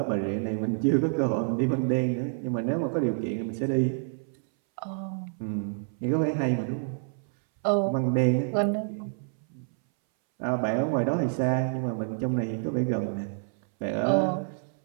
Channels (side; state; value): left; silent; 59 dB below the other